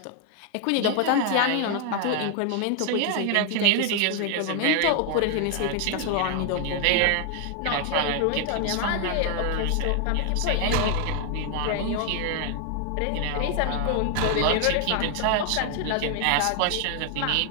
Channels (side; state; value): both; different; correlation 0.00